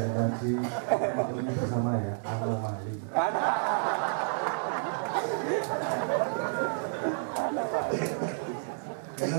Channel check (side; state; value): left; silent; digital silence